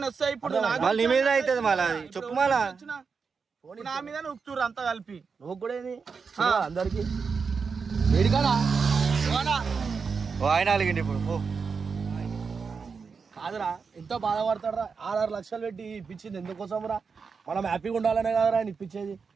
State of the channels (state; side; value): quieter; left; 5.4 dB